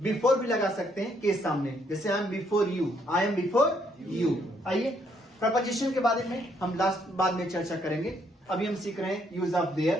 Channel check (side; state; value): both; normal; correlation 0.70